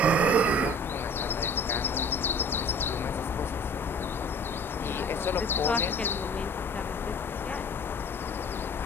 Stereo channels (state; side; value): normal; both; correlation 0.46